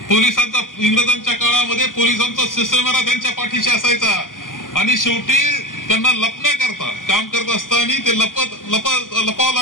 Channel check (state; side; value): late; right; 0.89 ms